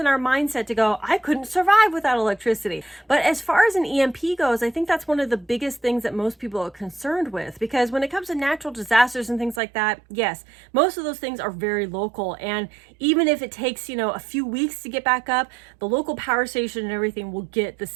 our mindset to go, I couldn't survive without electricity. But as far as an EMP goes, I think that's one of the biggest things that most people are concerned with, because when it comes to natural disasters and things like that, yes, most of those things are very local. And even if it takes, a few weeks to get back up, the local power station and everything will get the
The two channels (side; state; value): left; drops out; at 9.6 s